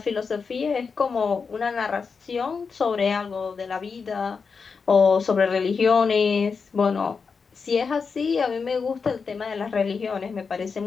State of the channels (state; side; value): quieter; right; 5.3 dB